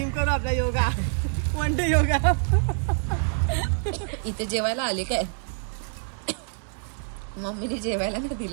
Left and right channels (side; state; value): left; silent; digital silence